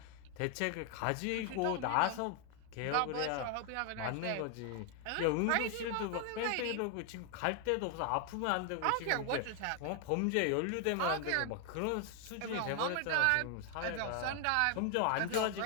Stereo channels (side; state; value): both; different; correlation 0.00